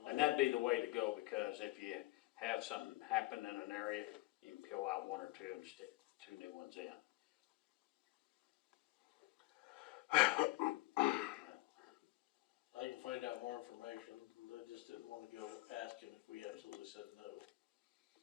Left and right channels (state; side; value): quieter; right; 20.4 dB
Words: And that'd be the way to go, because if you have something happen in an area, you can peel out one or two and stick 2 new ones in. I can find out more information. They just didn't wanna go asking if we absolutely said no.